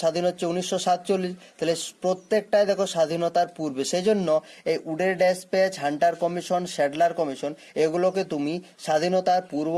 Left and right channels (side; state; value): both; identical; correlation 1.00